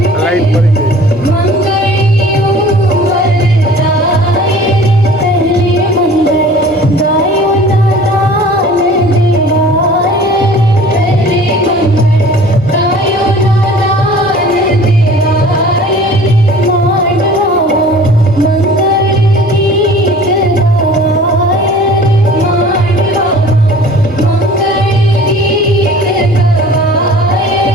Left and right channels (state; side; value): normal; both; correlation 0.46